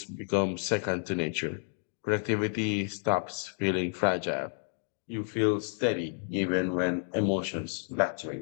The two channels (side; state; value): right; silent; 57 dB below the other